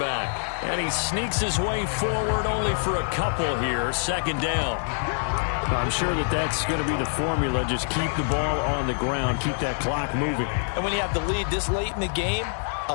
And he sneaks his way forward only for a couple here. 2nd down. I'm sure that's going to be the formula. Just keep the ball on the ground. Keep that clock moving. And when you have the lead this late in the game,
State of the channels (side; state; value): right; silent; digital silence